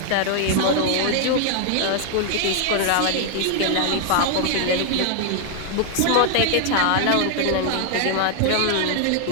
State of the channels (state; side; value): different; both; correlation 0.00